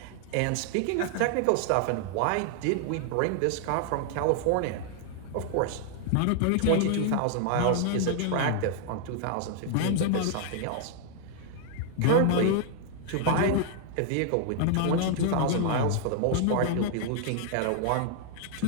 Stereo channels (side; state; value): both; different; correlation -0.01